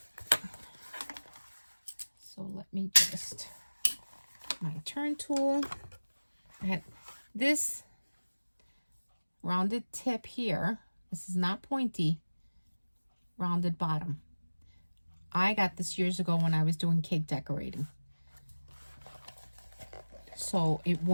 So let me just, my turn tool. I had this rounded tip here. This is not pointy. Rounded bottom. I got this years ago when I was doing cake decorating. So it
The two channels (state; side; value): inverted; both; correlation -1.00